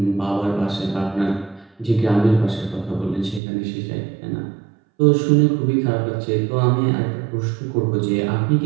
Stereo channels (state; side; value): drops out; left; at 3.4 s